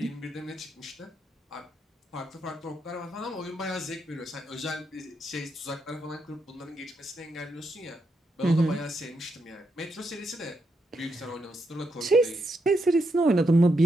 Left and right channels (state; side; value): normal; both; correlation 0.81